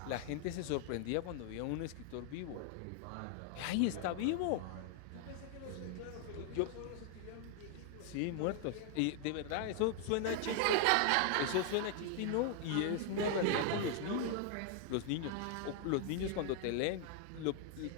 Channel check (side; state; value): both; different; correlation 0.00